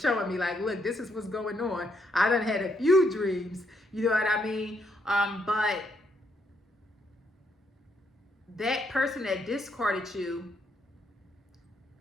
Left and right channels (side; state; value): both; normal; correlation 0.75